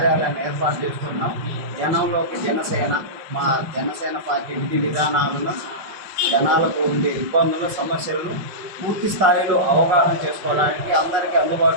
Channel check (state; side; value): late; left; 5.4 ms